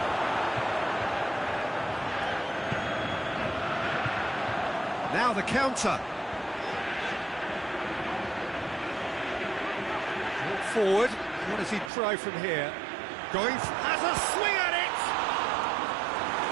Now the counter. Forward, what does he try from here? Going, has a swing at it!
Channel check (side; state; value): left; drops out; at 11.9 s